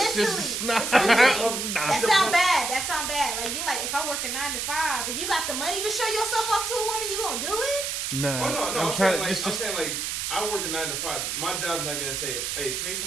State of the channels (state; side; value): noise; right; hiss, 2 dB below the sound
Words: nah. It's one thing. Nah. That sound bad. That sound bad. Like you're like, if I work a 9 to 5, if you got the money to show yourself off to a woman, you gonna do it? Nah. Oh no, I'm I'm trying saying to like I'm saying like I work a 9 to 5. My job's not gonna say, hey, take